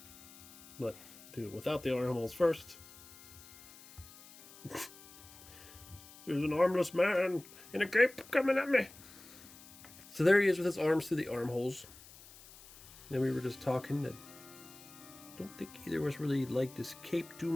But do it without the armholes first. There's an armless man in a cape coming at me. So there he is with his arms through the armholes. Then we were just talking that I don't think either of us really liked this cape too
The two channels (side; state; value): left; noise; hiss, 20 dB below the sound